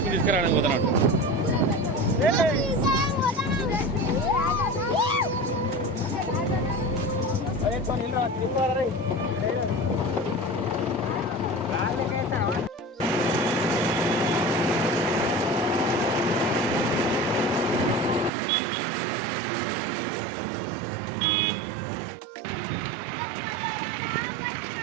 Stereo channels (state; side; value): drops out; left; at 18.3 s